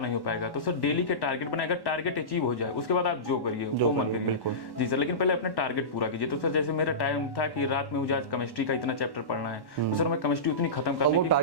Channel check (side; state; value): right; late; 1.1 ms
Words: नहीं हो पाएगा। तो सर डेली के टारगेट बनाएगा, टारगेट अचीव हो जाए उसके बाद आप जो करिए वो मन करिए। जी सर, लेकिन पहले अपने टारगेट पूरा कीजिए। तो सर जैसे मेरा टाइम था कि रात में मुझे आज केमिस्ट्री का इतना चैप्टर पढ़ना है, तो सर मैं केमिस्ट्री उतनी खत्म करने की